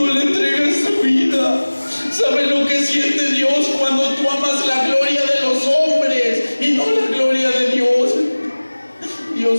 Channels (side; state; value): both; inverted; correlation -1.00